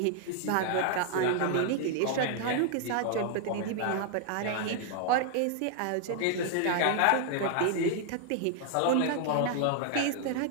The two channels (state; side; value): different; both; correlation 0.00